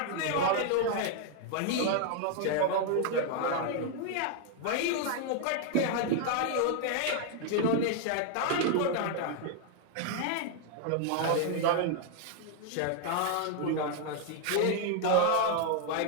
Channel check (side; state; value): both; different; correlation 0.00